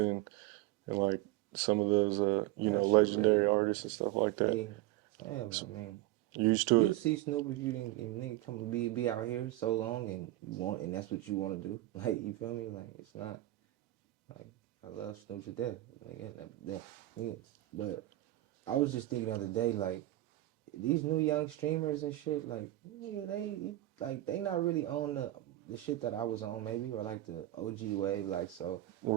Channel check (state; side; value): quieter; left; 16.4 dB